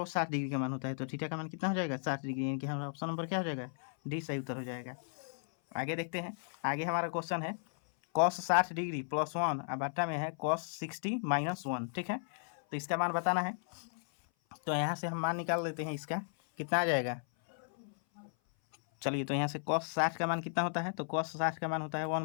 60 डिग्री का मान होता है, तो थीटा का मान कितना हो जाएगा 60 डिग्री, यानी कि हमारा ऑप्शन नंबर क्या हो जाएगा डी सही उत्तर हो जाएगा। आगे देखते हैं, आगे हमारा क्वेश्चन है cos 60 डिग्री +1 और बटा में है cos 60 -1, ठीक है। तो इसका मान बताना है, तो यहाँ से हम मान निकाल लेते हैं, इसका कितना आ जाएगा चलिए तो यहाँ से cos 60 का मान कितना होता है, तो cos 60 का मान होता है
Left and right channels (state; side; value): silent; right; 54 dB below the other